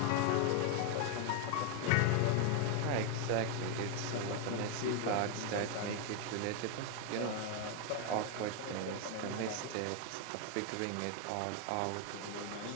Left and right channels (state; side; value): different; both; correlation 0.01